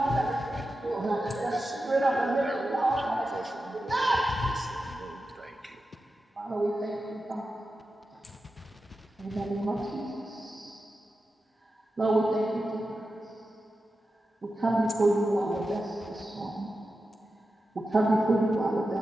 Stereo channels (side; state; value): both; normal; correlation 0.91